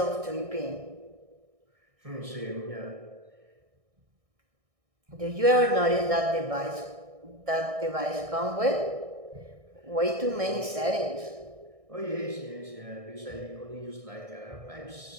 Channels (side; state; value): left; late; 1.6 ms